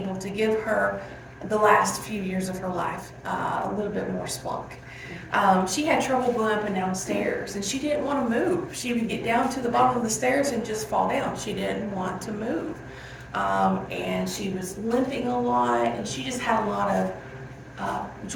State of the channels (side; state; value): both; identical; correlation 1.00